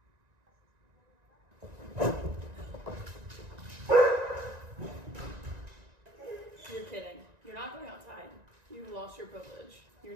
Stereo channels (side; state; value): left; late; 1.9 ms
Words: You're kidding. You're not going outside. You've lost your privilege. You're